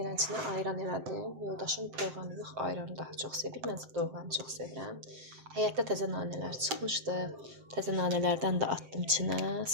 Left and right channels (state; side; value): late; left; 7.7 ms